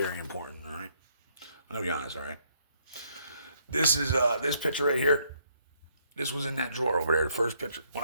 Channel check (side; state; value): both; inverted; correlation -0.69